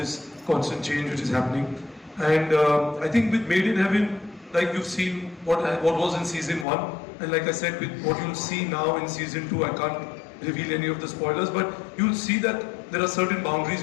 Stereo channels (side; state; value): right; drops out; at 6.7 s